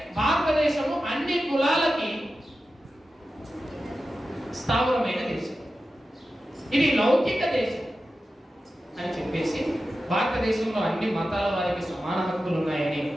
భారతదేశము అన్ని కులాలకి స్థావరమైన దేశం, ఇది లౌకిక దేశం అని చెప్పేసి భారతదేశంలో అన్ని మతాల వారికి సమాన హక్కులు ఉన్నాయని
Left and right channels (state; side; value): normal; both; correlation 0.93